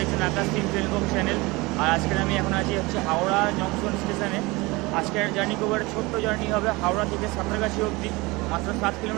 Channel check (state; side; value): quieter; left; 23.4 dB